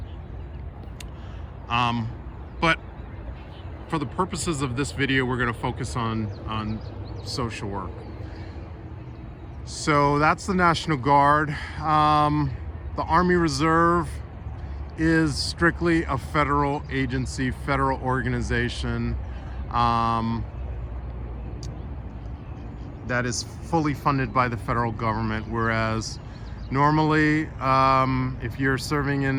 But for the purposes of this video, we're going to focus on social work. So that's the National Guard. The Army Reserve is strictly a federal agency, federal organization that is fully funded by the federal government, whereas normally if you're serving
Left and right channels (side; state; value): both; identical; correlation 1.00